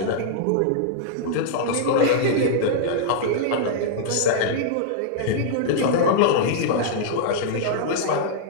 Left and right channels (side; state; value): both; different; correlation -0.02